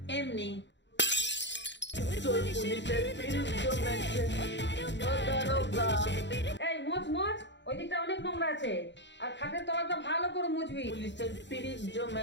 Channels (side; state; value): right; late; 0.52 ms